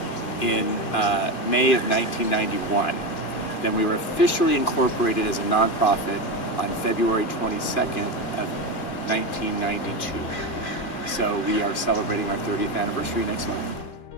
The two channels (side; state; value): right; late; 2.4 ms